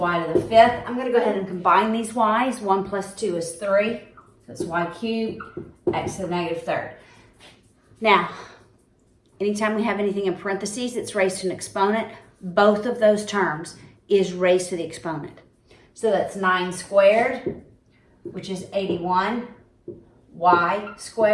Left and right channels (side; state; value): both; identical; correlation 1.00